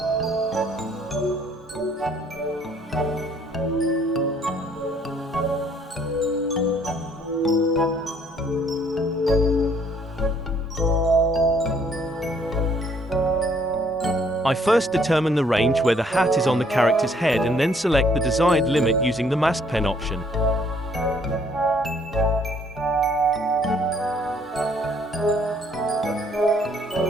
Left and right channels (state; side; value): normal; both; correlation 0.64